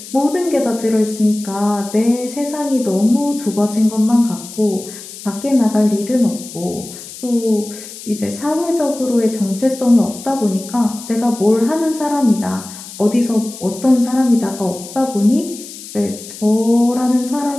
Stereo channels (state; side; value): noise; left; hiss, 14 dB below the sound